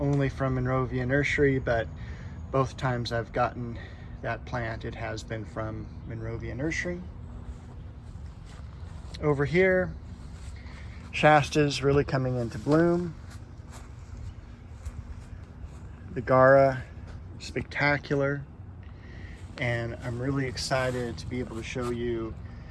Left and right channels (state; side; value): identical; both; correlation 1.00